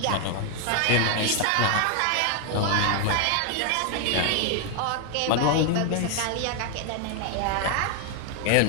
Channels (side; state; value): both; different; correlation 0.01